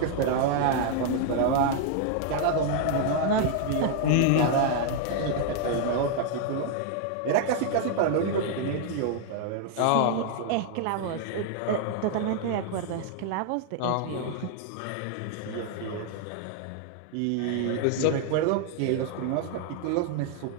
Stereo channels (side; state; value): both; different; correlation 0.00